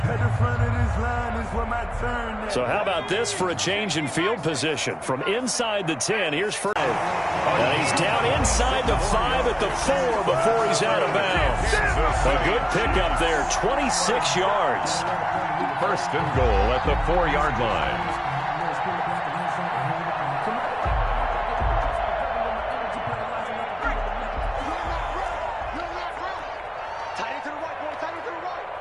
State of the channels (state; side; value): identical; both; correlation 1.00